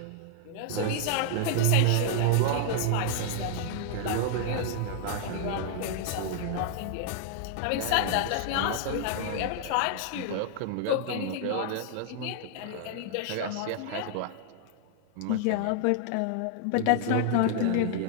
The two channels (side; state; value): both; different; correlation 0.00